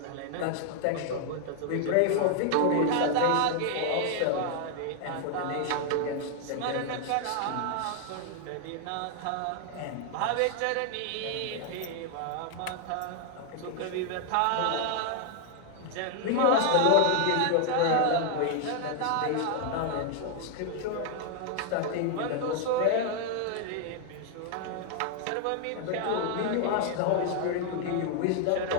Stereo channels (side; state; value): both; different; correlation 0.00